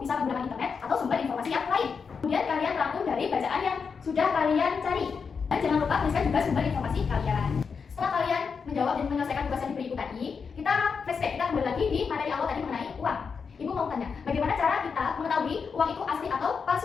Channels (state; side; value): quieter; right; 5.7 dB